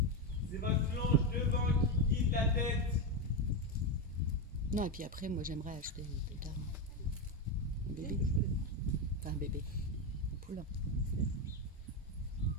C'est votre longe devant qui guide la tête. Non, et puis après, moi j'aimerais acheter plus tard un bébé. Enfin, un bébé. Un poulain.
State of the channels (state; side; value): normal; both; correlation 0.10